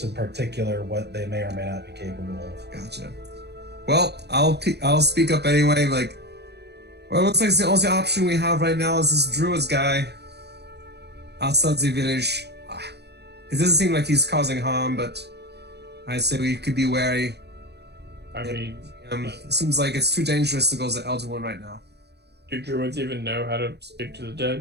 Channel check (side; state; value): left; late; 0.49 ms